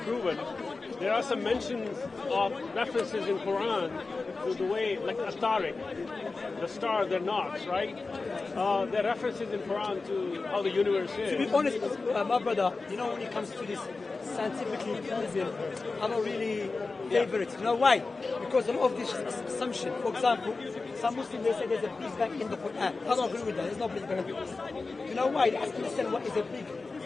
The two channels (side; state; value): right; quieter; 3.8 dB